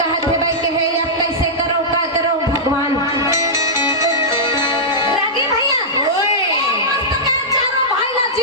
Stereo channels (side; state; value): both; normal; correlation -0.12